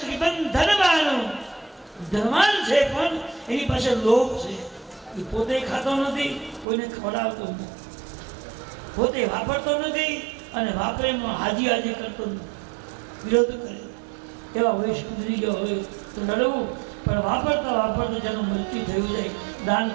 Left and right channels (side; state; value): left; drops out; at 6.7 s